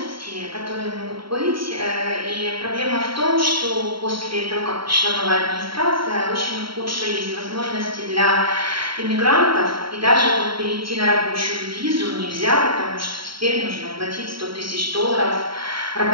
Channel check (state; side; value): late; left; 0.74 ms